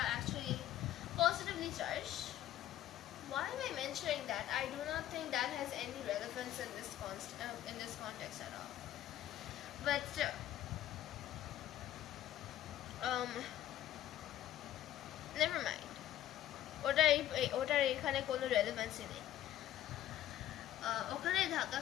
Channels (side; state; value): right; quieter; 12.6 dB